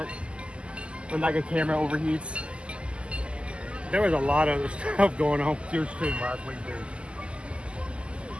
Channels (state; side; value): late; left; 0.053 ms